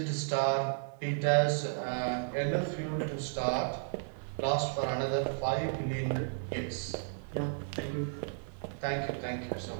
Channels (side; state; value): left; silent; 55 dB below the other